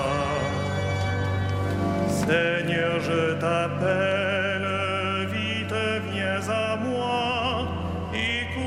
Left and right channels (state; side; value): identical; both; correlation 1.00